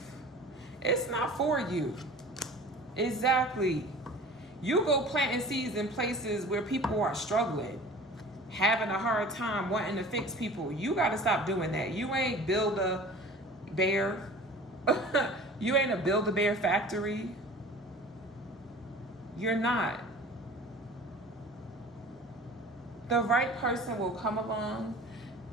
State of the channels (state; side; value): normal; both; correlation 0.42